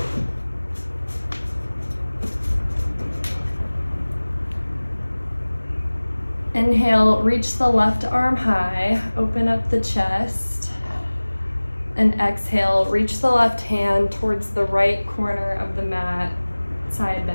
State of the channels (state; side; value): inverted; both; correlation -1.00